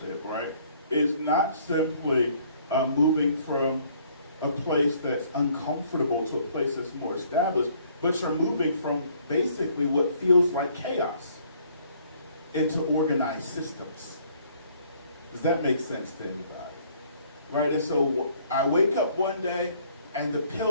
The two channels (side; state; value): both; inverted; correlation -0.62